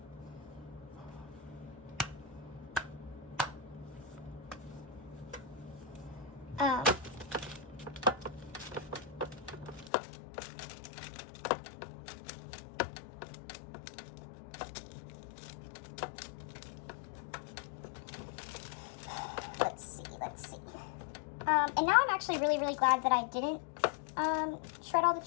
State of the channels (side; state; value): right; drops out; at 9.9 s